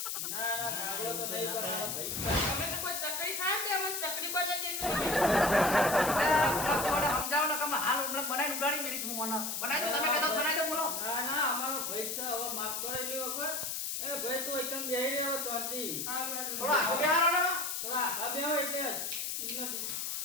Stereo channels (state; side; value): noise; left; hiss, 2 dB below the sound